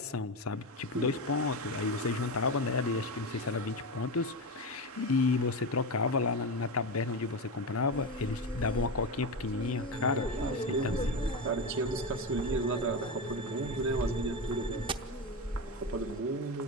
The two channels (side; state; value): both; normal; correlation 0.17